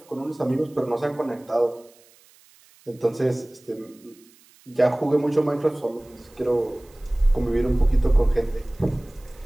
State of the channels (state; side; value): noise; right; hiss, 28 dB below the sound